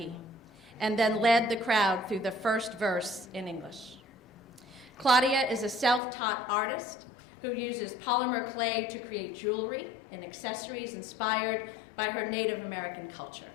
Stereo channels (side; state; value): right; drops out; at 6.0 s